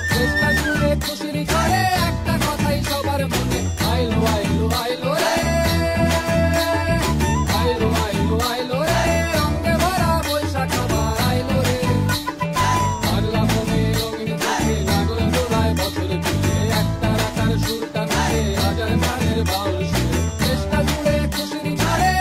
চেষ্টা জুড়ে খুশির ঝড়ে একটা কথাই সবার মনে আইলো আইলো আইলো রে আইলো আইলো আইলো রে রঙে ভরা বৈশাখ আবার আইলো রে পাগলা মনে রঙিন চোখে লাগল জোড়ায় বছর জুড়ে একটা রাখার সুরটা মিলে হাজার গানের বাউল সুরে চেষ্টা জুড়ে খুশির ঝড়ে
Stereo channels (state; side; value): identical; both; correlation 1.00